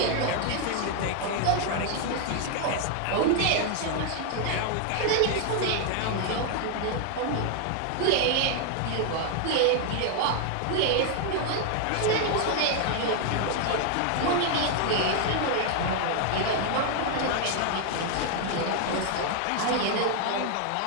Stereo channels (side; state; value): both; different; correlation 0.00